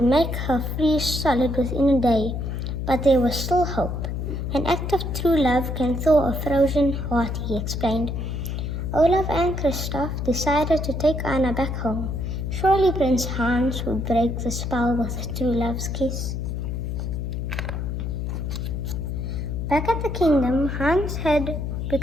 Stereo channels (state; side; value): noise; left; hum, 3 dB below the sound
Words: make her freeze solid within a day. But there was still hope. An act of true love can thaw a frozen heart, he explained. Olaf and Christoph decided to take Anna back home. Surely Prince Hans would break the spell with a true love's kiss. Back at the kingdom, Hans had